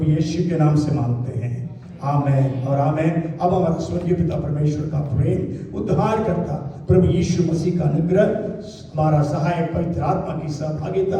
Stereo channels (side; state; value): both; identical; correlation 1.00